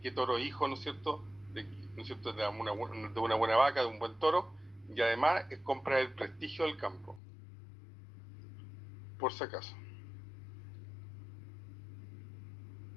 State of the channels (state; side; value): drops out; right; at 7.2 s